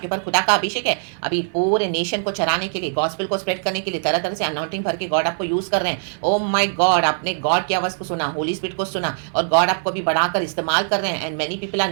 पास खुदा का अभिषेक है, अभी पूरे नेशन को चराने के लिए, गॉस्पेल को स्प्रेड करने के लिए तरह तरह से अनाउंटिंग भर के गॉड आपको यूज कर रहे हैं। ओ माय गॉड, आपने गॉड की आवाज को सुना, होली स्पिरिट को सुना, और गॉड आपको भी बढ़ाकर इस्तेमाल कर रहे हैं, and many people are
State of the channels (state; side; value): silent; left; 57 dB below the other